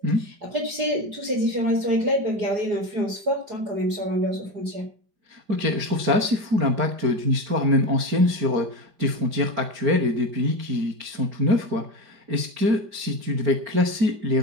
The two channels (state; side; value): late; left; 5.0 ms